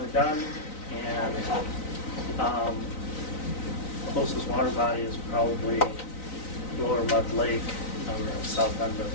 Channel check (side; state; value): right; late; 3.9 ms